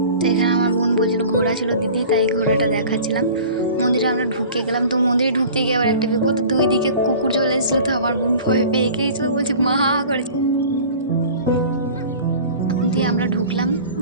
তো এখানে আমার বোন বলছিল ঘোড়া ছিল দিদি, তাই ঘোড়াটা দেখাচ্ছিলাম। মন্দিরে আমরা ঢুকে গেলাম, তো মন্দিরে ঢুকতে গিয়ে আবার একটা বিপদ, দুই দিকে কুকুর চলে এসেছিলো, তো আমার বোন ভয় পেয়ে গিয়েছিল, বলছে মা করে দিয়ে আমরা ঢুকলাম,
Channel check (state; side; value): inverted; both; correlation -0.42